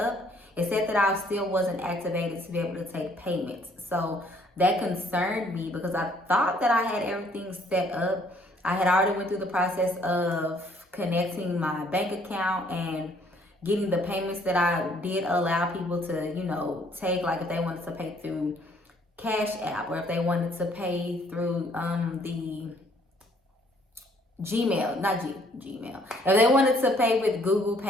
It said that I still wasn't activated to be able to take payments. So that concerned me because I thought that I had everything set up. I had already went through the process of connecting my bank account and getting the payments that I did allow people to, take, like if they wanted to pay through Cash App or if they wanted to pay through the Gmail, not Gmail. If they wanted to pay with Google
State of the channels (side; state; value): both; normal; correlation 0.63